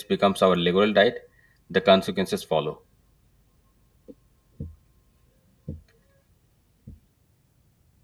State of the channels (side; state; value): both; identical; correlation 1.00